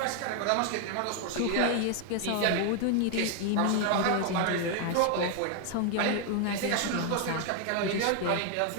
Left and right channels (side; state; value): both; different; correlation 0.00